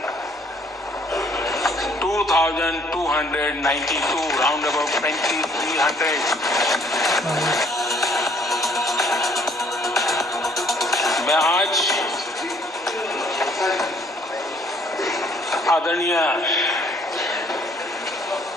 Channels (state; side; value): normal; both; correlation 0.62